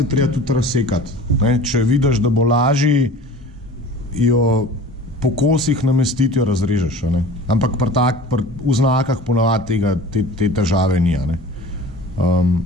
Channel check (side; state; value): both; normal; correlation 0.40